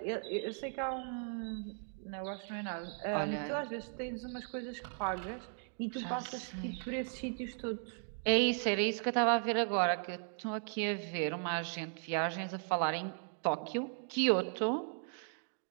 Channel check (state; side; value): silent; left; 53 dB below the other